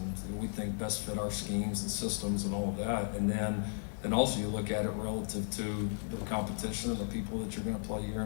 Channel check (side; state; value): right; silent; 54 dB below the other